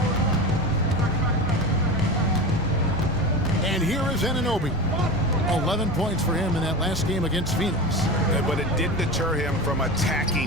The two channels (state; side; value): noise; left; rumble, 10 dB below the sound